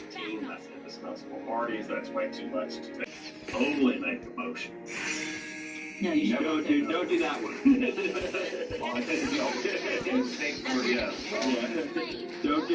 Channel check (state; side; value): identical; both; correlation 1.00